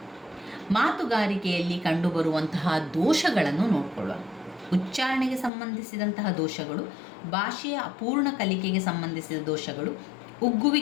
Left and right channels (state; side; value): drops out; right; at 5.5 s